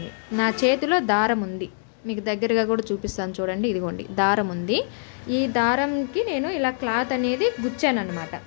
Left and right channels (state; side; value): silent; right; digital silence